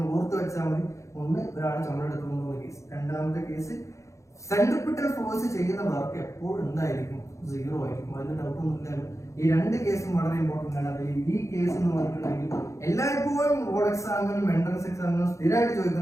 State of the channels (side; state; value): right; late; 0.15 ms